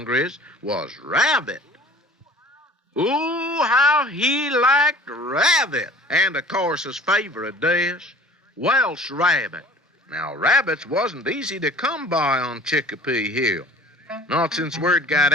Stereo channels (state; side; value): normal; both; correlation 0.47